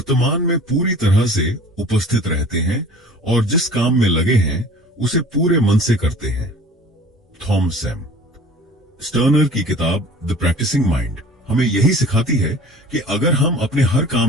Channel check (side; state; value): both; normal; correlation 0.45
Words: में पूरी तरह से उपस्थित रहते हैं और जिस काम में लगे हैं उसे पूरे मन से करते हैं। थॉमस एम स्टर्नर की किताब द प्रैक्टिसिंग माइंड हमें यही सिखाती है कि अगर हम अपने हर